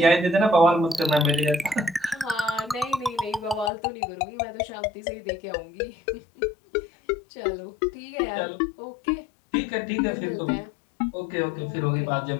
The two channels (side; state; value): right; drops out; at 3.7 s